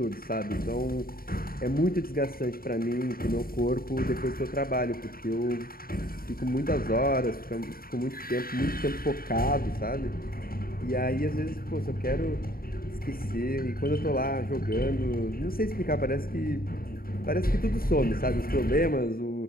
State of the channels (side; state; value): right; late; 0.43 ms